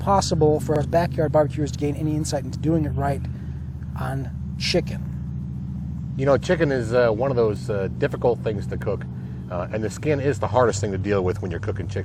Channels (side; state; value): both; identical; correlation 1.00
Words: for us backyard barbecuers to gain any insight into doing it right on chicken?" You know, chicken is one of those difficult things to cook, and the skin is the hardest thing to deal with when you're cooking